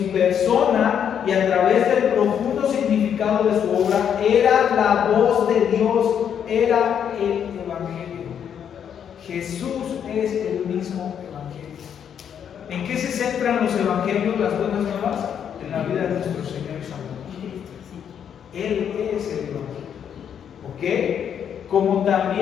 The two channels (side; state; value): right; quieter; 8.5 dB